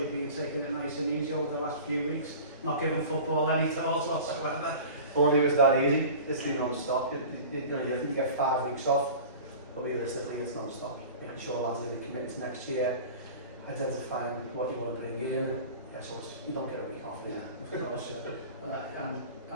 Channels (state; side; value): inverted; both; correlation -0.38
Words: been taking it nice and easy over the last few weeks, not giving football any thought whatsoever. Only it was that easy. It's been non-stop. You think you get 5 weeks off, but realistically it's non-stop. Making sure lads are committed to next year, identifying what you want to bring in. Yeah, so you don't get a week off. Yeah, of course. And